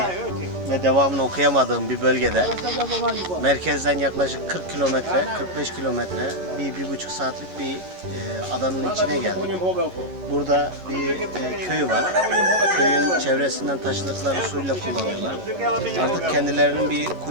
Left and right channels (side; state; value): left; late; 11 ms